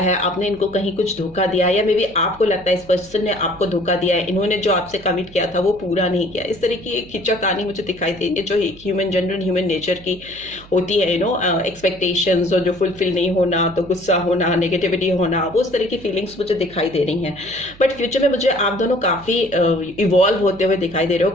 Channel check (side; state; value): right; noise; hum, 22 dB below the sound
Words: आपने इनको कहीं कुछ धोखा दिया है, या मे बी आपको लगता है इस पर्सन ने आपको धोखा दिया है, इन्होंने जो आपसे कमिट किया था वो पूरा नहीं किया। इस तरह की एक खिंचा कहानी मुझे दिखाई देती है जो एक जनरल ह्यूमन नेचर की होती है, एक्सपेक्टेशंस और जो फुलफिल नहीं होना, तो गुस्सा होना, नेगेटिविटी होना, वो उस तरह की फीलिंग्स मुझे दिखाई दे रही हैं। बट फ्यूचर में मुझे आप दोनों काफ़ी इवॉल्व होते हुए दिखाई दे रहे हो,